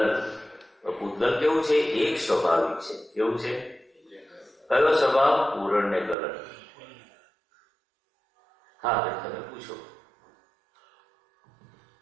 પૂદગલ કેવું છે? એક સ્વાભાવિક છે. કેવું છે? કયો સ્વભાવ? પૂરણ ને ગલન. હા ભાઈ તમે પૂછો.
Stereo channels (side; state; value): left; drops out; at 6.2 s